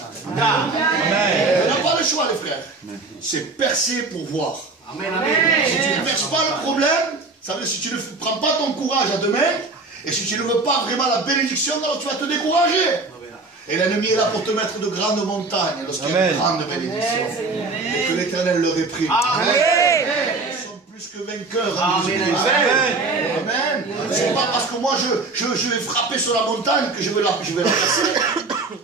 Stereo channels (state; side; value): quieter; left; 3.6 dB